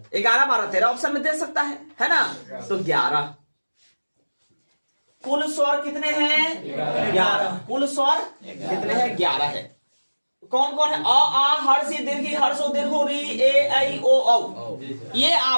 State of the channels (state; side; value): inverted; both; correlation -1.00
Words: 11 12 13 ऑप्शन में दे सकता है ना? तो 11। कुल स्वर कितने हैं? 11। कुल स्वर कितने हैं? 11 है। कौन कौन है? अ आ हर्ष ई दीर्घ ई हर्ष ओ दीर्घ री ए ऐ ओ औ। ये